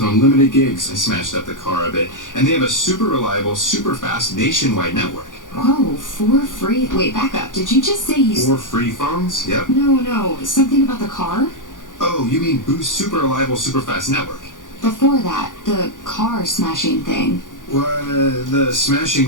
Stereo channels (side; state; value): right; late; 0.88 ms